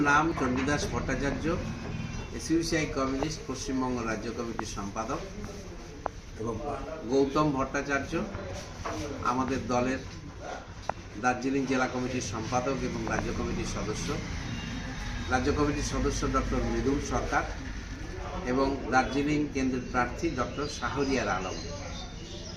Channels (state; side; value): identical; both; correlation 1.00